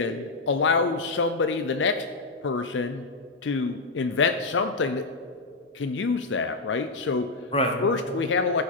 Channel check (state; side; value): quieter; right; 3.6 dB